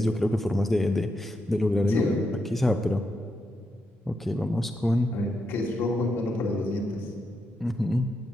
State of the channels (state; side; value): normal; both; correlation 0.83